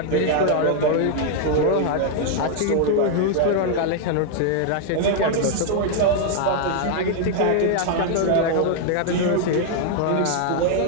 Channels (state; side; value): different; both; correlation 0.00